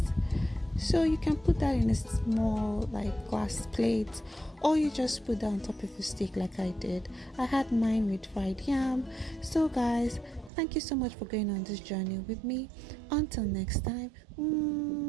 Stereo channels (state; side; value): drops out; left; at 10.5 s